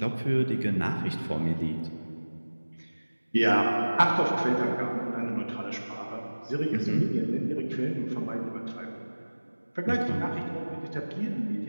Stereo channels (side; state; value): both; inverted; correlation -1.00